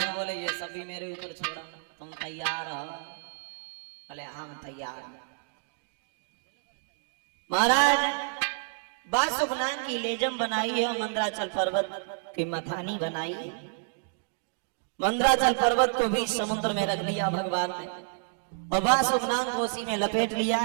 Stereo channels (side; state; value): left; silent; digital silence